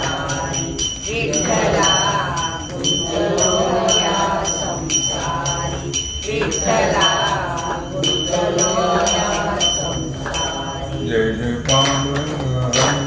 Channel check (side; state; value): both; identical; correlation 1.00